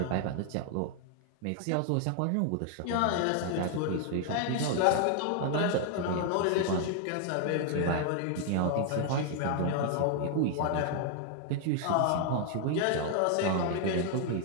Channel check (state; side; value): different; both; correlation 0.00